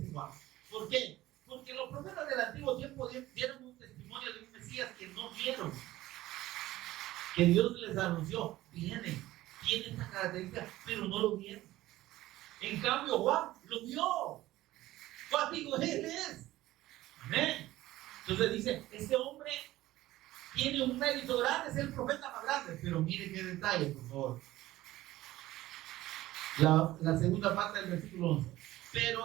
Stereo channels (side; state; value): left; quieter; 16.2 dB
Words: Juan. ¿Por qué? Porque los profetas del antiguo tiempo dieron un testimonio de un Mesías que no vieron, que Dios les anunció: tiene esta característica, pero no lo vieron. En cambio Juan lo vio. Juan dijo: él es. Amén. Entonces dice: este hombre tiene un mérito grande, es el profeta más grande. Pero mire qué detalle, por favor. La segunda parte del versículo 11.